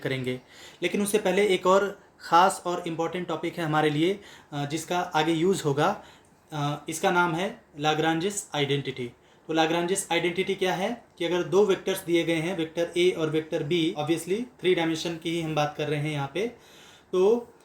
लेकिन उससे पहले एक और ख़ास और इम्पॉर्टेंट टॉपिक है हमारे लिए जिसका आगे यूज़ होगा। इसका नाम है लाग्रांजिस आइडेंटिटी। तो लाग्रांजिस आइडेंटिटी क्या है कि अगर दो वेक्टर्स दिए गए हैं, वेक्टर ए और vector B, obviously three dimension की ही हम बात कर रहे हैं यहाँ पे, तो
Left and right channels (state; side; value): identical; both; correlation 1.00